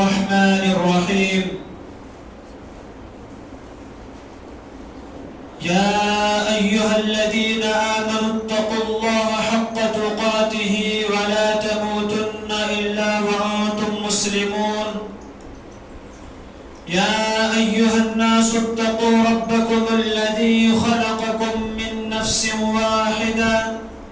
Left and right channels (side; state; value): both; identical; correlation 1.00